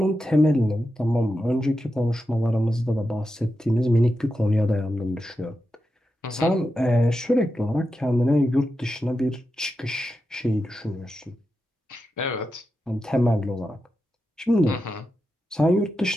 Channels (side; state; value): both; normal; correlation 0.89